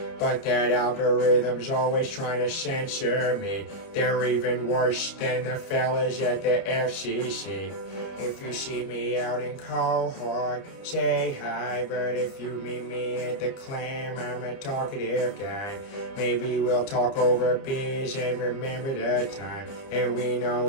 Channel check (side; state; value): right; late; 30 ms